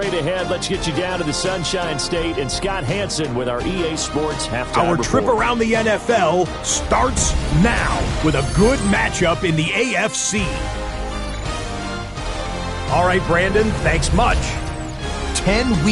ahead. Let's get you down to the Sunshine State and Scott Hansen with our EA Sports halftime Our report. trip around the NFL starts now with a good matchup in the AFC. All right, Brandon, thanks much. 10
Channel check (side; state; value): both; identical; correlation 1.00